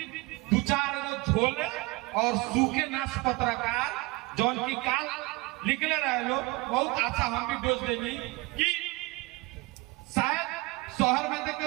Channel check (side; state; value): left; quieter; 24.1 dB